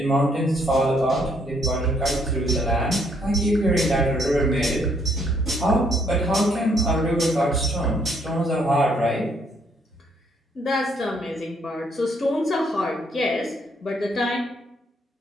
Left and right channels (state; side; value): normal; both; correlation 0.69